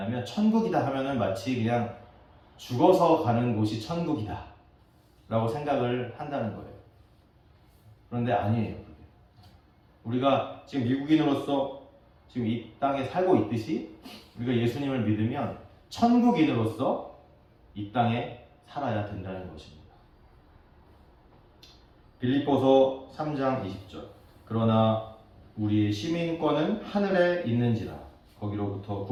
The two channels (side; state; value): both; identical; correlation 1.00